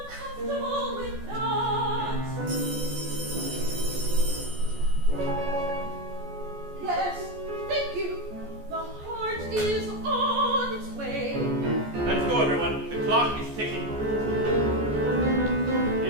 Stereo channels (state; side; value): late; left; 14 ms